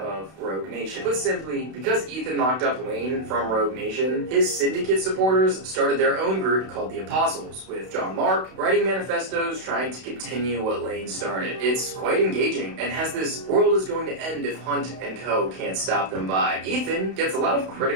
Rogue Nation. Put simply, because Ethan locked up Lane from Rogue Nation, his syndicate supporters started their own group called the Apostles, with John Mark writing manifestos trying to continue what Lane started. It's quite engaging and has this world is going to end if Hunt and Co. can't stop them vibe. Ethan gets a lot of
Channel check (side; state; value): left; late; 32 ms